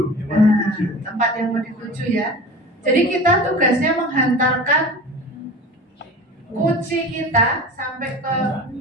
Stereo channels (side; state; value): both; normal; correlation 0.36